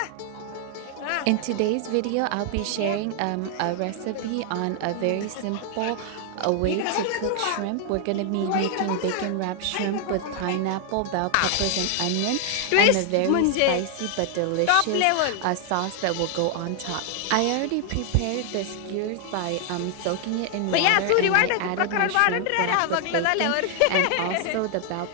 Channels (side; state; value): both; different; correlation 0.00